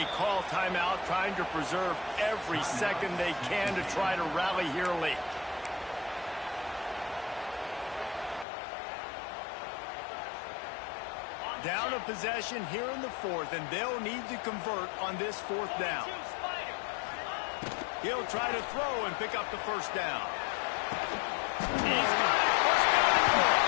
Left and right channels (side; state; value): right; drops out; at 8.5 s